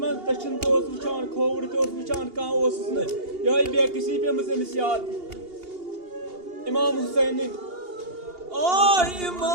taşın da os uçan, kovur da os uçan kan osunu. Yay bir kişi bir mısınız ya? İmam Hüseyin'in Ay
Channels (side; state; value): left; late; 2.8 ms